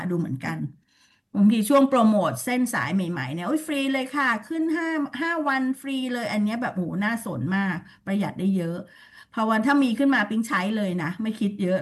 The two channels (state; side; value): identical; both; correlation 1.00